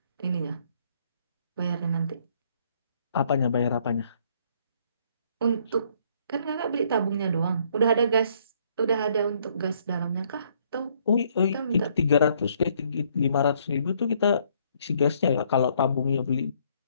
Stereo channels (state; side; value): inverted; both; correlation -0.66